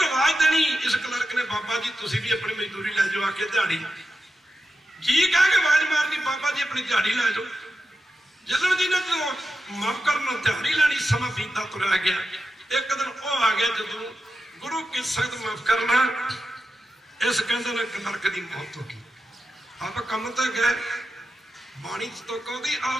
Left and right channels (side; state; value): both; normal; correlation 0.90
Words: ਆਵਾਜ਼ ਦੇਣੀ। ਇਸ ਕਲਰਕ ਨੇ ਬਾਬਾ ਜੀ ਤੁਸੀਂ ਵੀ ਆਪਣੀ ਮਜ਼ਦੂਰੀ ਲੈ ਜਾਓ, ਆ ਕੇ ਦਿਹਾੜੀ ਜੀ ਕਹਿ ਕੇ ਆਵਾਜ਼ ਮਾਰਨੀ, ਬਾਬਾ ਜੀ ਆਪਣੀ ਦਿਹਾੜੀ ਲੈ ਜਾਓ। ਚੱਲਣ ਜੀ ਨੇ ਜਦੋਂ ਮਾਫ ਕਰਨ ਦਿਹਾੜੀ ਲੈਣੀ, ਸਮਾਂ ਬੀਤਦਾ ਤੁਰਿਆ ਗਿਆ। ਇੱਕ ਦਿਨ ਉਹ ਆ ਗਿਆ ਜਦੋਂ गुरु की संगत माफ करना, इस कहते ने नरक की मौत होगी। आप कम तो गए, बाणी तो कहती